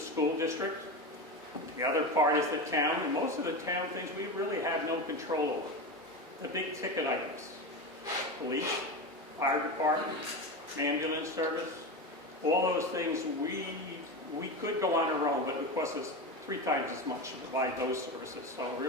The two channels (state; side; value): normal; both; correlation 0.21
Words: district. The other part is the town. And most of the town things we really have no control over. The big ticket items. Police, fire department, ambulance service. All those things we could go on our own, but it would cost us 3 times as much to provide those services. So